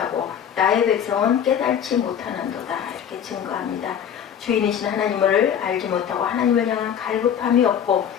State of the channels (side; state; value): right; quieter; 8.8 dB